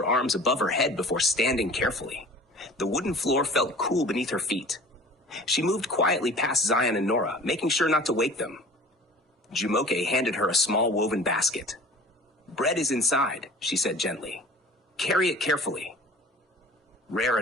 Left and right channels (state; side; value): normal; both; correlation 0.43